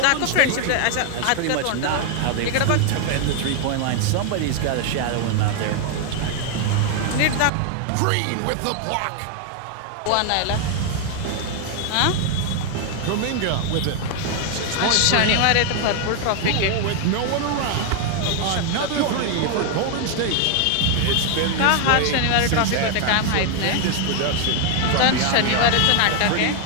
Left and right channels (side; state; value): both; different; correlation 0.00